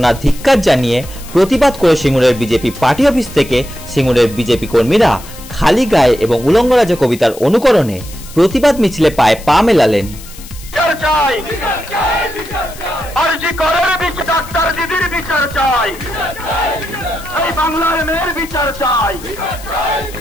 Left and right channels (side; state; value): left; noise; hiss, 17 dB below the sound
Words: ধিক্কার জানিয়ে প্রতিবাদ করে সিঙ্গুরের বিজেপি পার্টি অফিস থেকে সিঙ্গুরের বিজেপি কর্মীরা খালি গায়ে এবং উলঙ্গ রাজা কবিতার অনুকরণে প্রতিবাদ মিছিলে পায়ে পা মেলালেন।